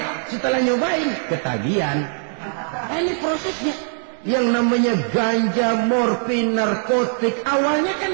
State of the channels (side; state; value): left; silent; 57 dB below the other